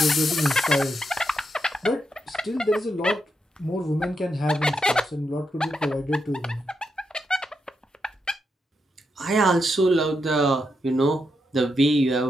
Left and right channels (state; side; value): normal; both; correlation 0.83